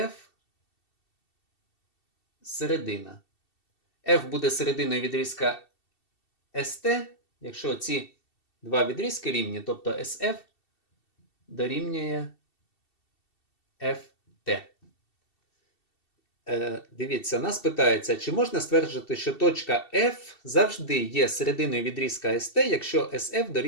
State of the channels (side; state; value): right; late; 2.7 ms